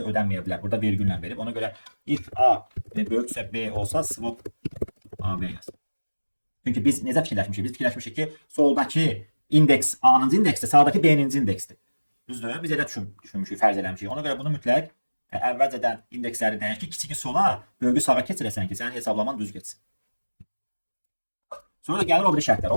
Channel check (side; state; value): both; inverted; correlation -1.00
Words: ödənməyə bilər. Burada vergüllə verib. Ona görə if A böyüksə B olsa swap AB yaz. Çünki biz necə fikirləşmişik? Biz fikirləşmişik ki, soldakı indeks A-nıncı indeksdir, sağdakı B-ninci indeksdir. Düzdür? Biz elə düşünmüşük, fərz eləmişik. Ona görə bunu mütləq əvvəlcədən indeksləri dəyək ki, kiçiki sola, böyüyü sağa keçirəsən ki, sənin hesablaman düz getsin. Sonra gəlir o biri şərtlər.